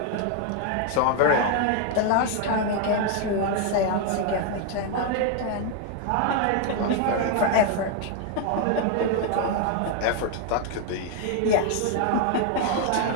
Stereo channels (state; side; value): different; both; correlation 0.00